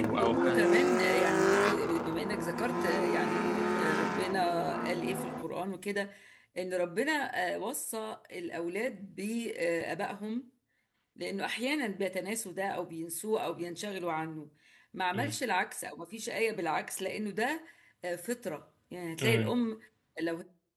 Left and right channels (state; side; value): identical; both; correlation 1.00